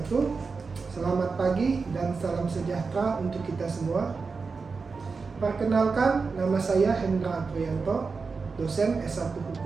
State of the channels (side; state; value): left; quieter; 4.7 dB